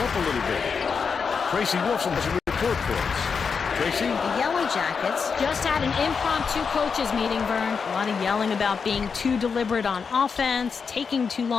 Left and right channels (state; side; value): quieter; right; 5.7 dB